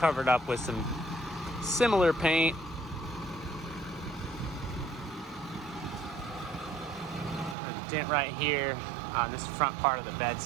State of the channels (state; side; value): drops out; left; at 7.6 s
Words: up with some similar paint. A dent right here on this front part of the